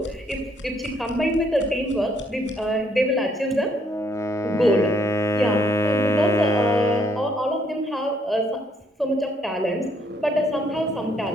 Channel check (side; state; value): both; normal; correlation 0.69